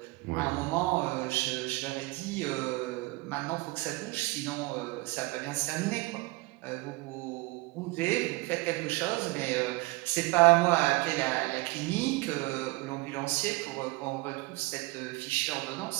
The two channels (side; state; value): left; quieter; 23.2 dB